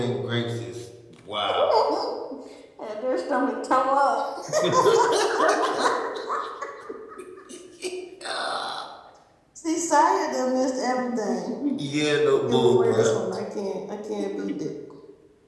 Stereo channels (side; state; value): both; identical; correlation 1.00